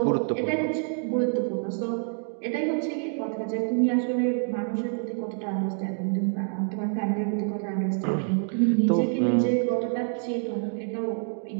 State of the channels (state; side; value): silent; left; 60 dB below the other